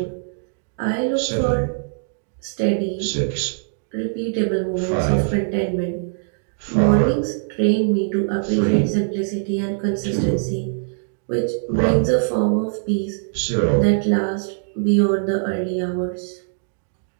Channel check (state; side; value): silent; left; digital silence